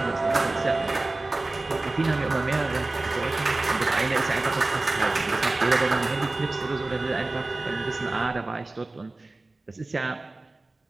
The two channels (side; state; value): left; quieter; 3.1 dB